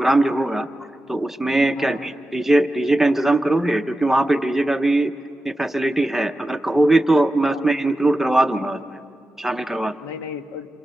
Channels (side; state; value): both; normal; correlation 0.92